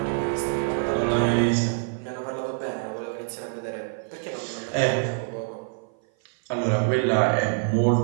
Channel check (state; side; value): silent; left; 57 dB below the other